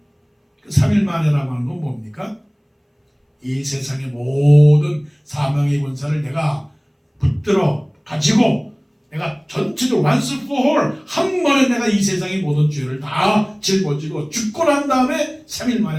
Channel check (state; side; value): identical; both; correlation 1.00